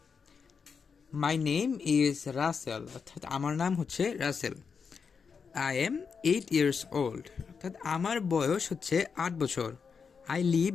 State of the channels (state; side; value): quieter; right; 5.8 dB